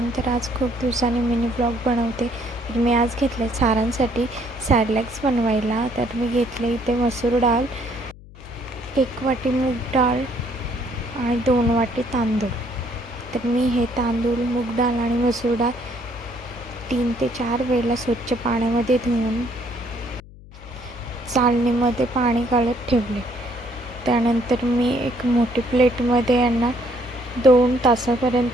तर आज खूप दिवसांनी मिनी ब्लॉग बनवते. तर मी आज घेतले सारांसाठी सॅडलॅक्स बनवायला. तर मी घेतले इथे मसूर डाळ, 1 वाटी मूग डाळ आणि 2 वाटी तांदूळ. तर मी हे तांदूळ, मूग डाळ आणि मसूर डाळ 3 ते 4 वेळेला स्वच्छ पाण्यामध्ये धुवून चाळणीमध्ये पाणी काढत ठेवले. त्यानंतर मी एक मोठी प्लेटमध्ये यांना 2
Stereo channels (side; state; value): left; noise; hum, 19 dB below the sound